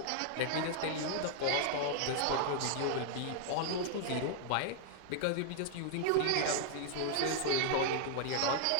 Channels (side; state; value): both; different; correlation -0.01